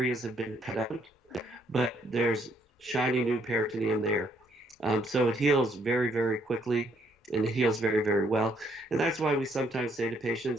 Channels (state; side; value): normal; both; correlation 0.69